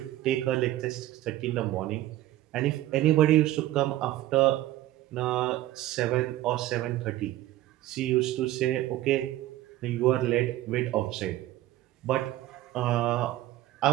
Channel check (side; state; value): left; quieter; 15.2 dB